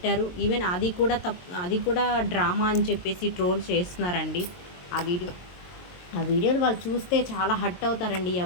ఈవెన్ అది కూడా డ్రామా అని చెప్పేసి ట్రోల్ చేస్తున్నారండి. ఆ వీడియోలు వాళ్ళు చూస్తే చాలా హర్ట్ అవుతారండి.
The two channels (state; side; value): late; right; 22 ms